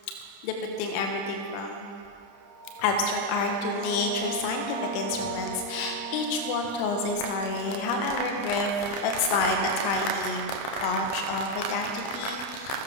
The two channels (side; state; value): right; late; 30 ms